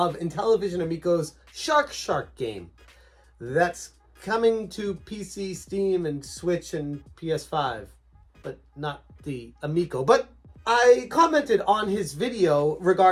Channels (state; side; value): identical; both; correlation 1.00